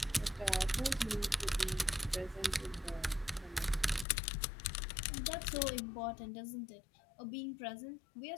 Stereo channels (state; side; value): drops out; right; at 4.0 s